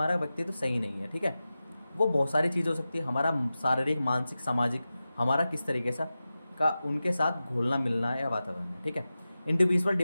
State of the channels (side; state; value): both; inverted; correlation -0.94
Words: व्यक्तित्व सही नहीं है। ठीक है, वो बहुत सारी चीज़ हो सकती है, हमारा शारीरिक, मानसिक, सामाजिक, हमारा किस तरीके से का उनके साथ घुलना मिलना है या वातावरण है। ठीक है, इंडिविजुअल